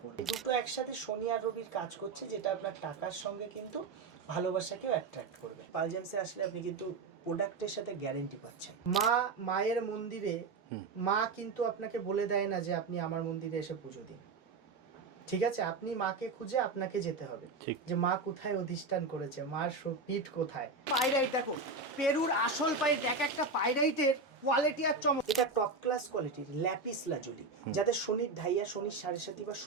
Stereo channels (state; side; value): quieter; left; 4.0 dB